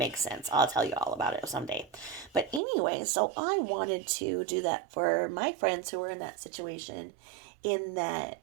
sense. I'll tell you all about it someday. But anyway, so I wanted to do that for my friends who were in that situation, in that,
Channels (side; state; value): left; drops out; at 2.6 s